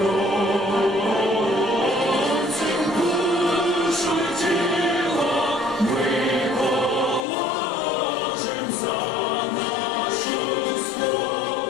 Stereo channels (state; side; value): drops out; right; at 7.2 s